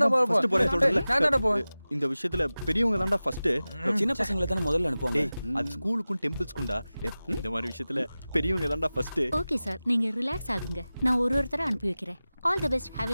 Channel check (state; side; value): inverted; both; correlation -0.97